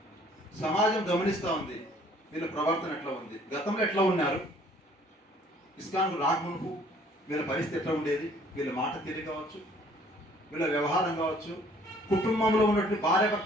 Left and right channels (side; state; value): both; normal; correlation 0.58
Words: సమాజం గమనిస్తూ ఉంది వీళ్ళ ప్రవర్తన ఎట్లా ఉంది, గతంలో ఎట్లా ఉన్నారు, ఇస్కాన్కు రాకమునుపు వీళ్ళ పరిస్థితి ఎట్లా ఉండేది, వీళ్ళ మాట తీరు కావచ్చు, వీళ్ళ వ్యవహారం కావచ్చు, కుటుంబంలో ఉన్నటువంటి